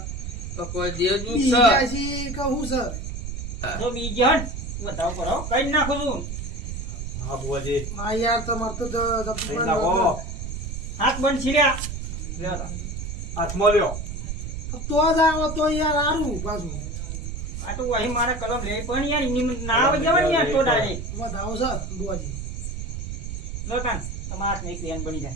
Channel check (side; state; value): right; noise; rumble, 6 dB below the sound